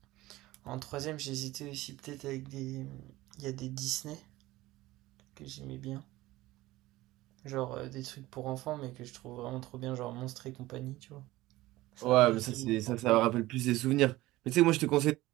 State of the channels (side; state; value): left; quieter; 17.9 dB